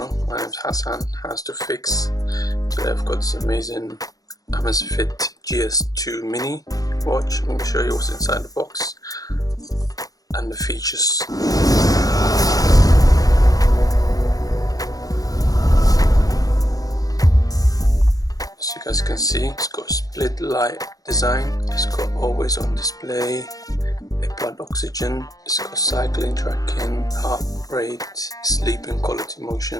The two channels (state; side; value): late; right; 0.17 ms